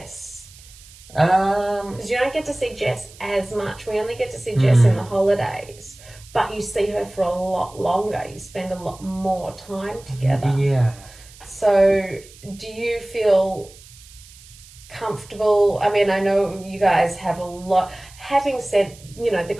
Because you don't get to see Jess as much. We only get to see Jess in the holidays, but you see her for a lot longer. You spend a lot more time together. Yeah. So, do you feel comfortable? I mean, I know you guys have a lot. Having said, the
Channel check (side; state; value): right; noise; hiss, 22 dB below the sound